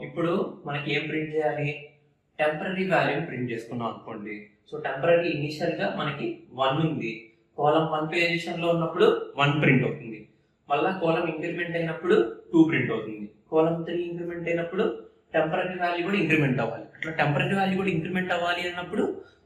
ఇప్పుడు మనకి ఏం ప్రింట్ చేయాలి? టెంపరీ వాల్యూని ప్రింట్ చేసుకున్నాం అనుకోండి. సో టెంపరీ ఇనిషియల్ గా మనకి 1 ఉంది. కాలమ్ 1 పొజిషన్ లో ఉన్నప్పుడు 1 ప్రింట్ అవుతుంది. మళ్ళా కాలమ్ ఇంక్రిమెంట్ అయినప్పుడు 2 ప్రింట్ అవుతుంది. కాలమ్ 3 ఇంక్రిమెంట్ అయినప్పుడు టెంపరీ వాల్యూ కూడా ఇంక్రిమెంట్ అవ్వాలి. అట్లా టెంపరీ వాల్యూ కూడా ఇంక్రిమెంట్ అవ్వాలి అన్నప్పుడు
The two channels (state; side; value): identical; both; correlation 1.00